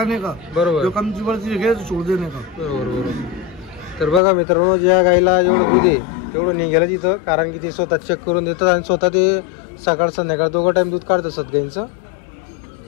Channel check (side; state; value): right; drops out; at 4.2 s